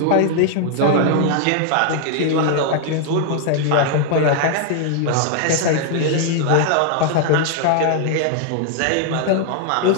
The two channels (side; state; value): both; different; correlation 0.00